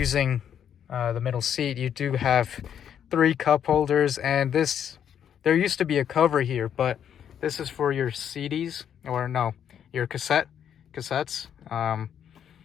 the middle seat, you do have 3 cup holders, and there used to be a cover here, but this is for your CDs, or no, your cassettes.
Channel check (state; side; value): quieter; right; 9.0 dB